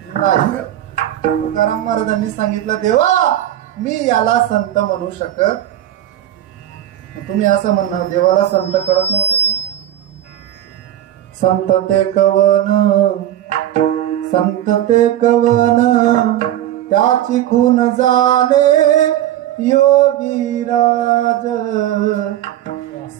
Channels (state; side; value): quieter; left; 12.4 dB